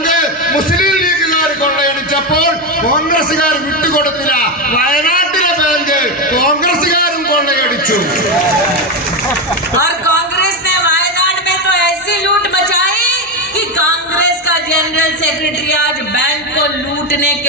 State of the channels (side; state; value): both; normal; correlation 0.11